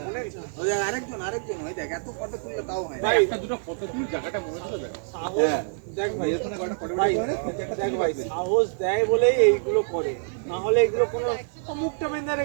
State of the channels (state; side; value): silent; left; digital silence